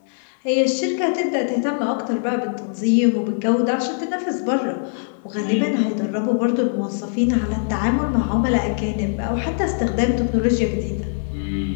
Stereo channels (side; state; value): right; silent; digital silence